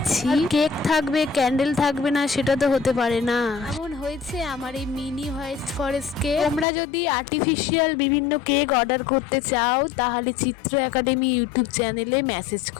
কেক থাকবে, ক্যান্ডেল থাকবে না সেটা তো হতে পারে না। এমন হয়েছে আমার এই মিনি হোয়াইট ফরেস্ট কেক। তোমরা যদি আর্টিফিশিয়াল বিভিন্ন কেক অর্ডার করতে চাও তাহলে চিত্র একাডেমি ইউটিউব চ্যানেলে মেসেজ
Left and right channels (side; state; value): right; drops out; at 6.7 s